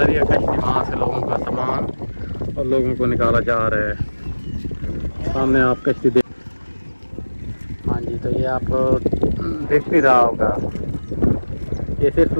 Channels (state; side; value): inverted; both; correlation -1.00